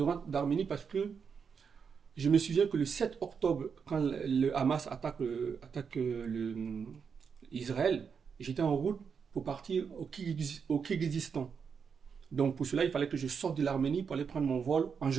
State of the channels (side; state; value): left; quieter; 6.3 dB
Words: rentre d'Arménie parce que je me souviens que le 7 octobre, quand le Hamas attaque Israël, j'étais en route pour partir au Kirghizistan. Donc pour cela, il fallait que je sorte de l'Arménie pour aller prendre mon vol en